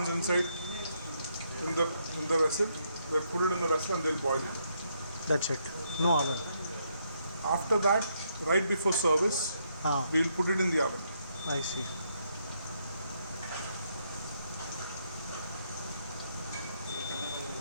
inside in the vessel. They put it in the vessel and they'll boil it. That's it. No oven. After that, right before service, Ah, we'll put it in the oven. I see.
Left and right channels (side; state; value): both; inverted; correlation -0.75